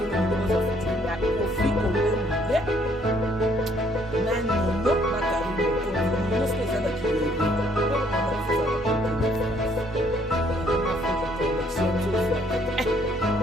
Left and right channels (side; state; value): both; normal; correlation 0.65